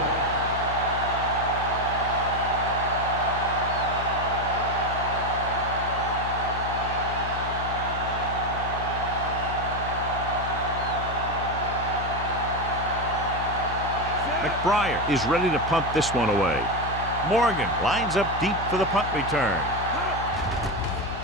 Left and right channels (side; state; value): left; noise; hum, 7 dB below the sound